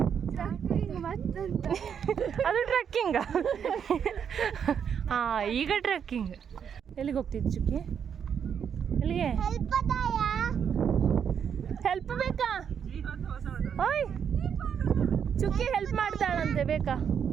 ಅದು ಟ್ರೆಕ್ಕಿಂಗ? ಹಾಂ, ಈಗ ಟ್ರೆಕ್ಕಿಂಗ್. ಎಲ್ಲಿಗೆ ಹೋಗ್ತಿದ್ದಿ ಚುಕ್ಕಿ? ಎಲ್ಲಿಗೆ? ಹೆಲ್ಪ್ ಬೇಕಾ? ಓಯ್ ಚುಕ್ಕಿ ಹೆಲ್ಪ್ ಮಾಡ್ತಾಳಂತೆ, ಬೇಕಾ?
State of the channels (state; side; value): quieter; left; 7.7 dB